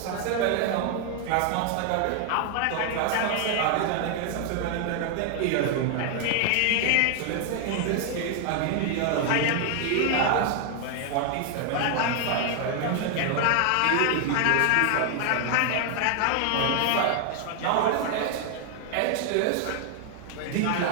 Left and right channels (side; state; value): both; different; correlation 0.00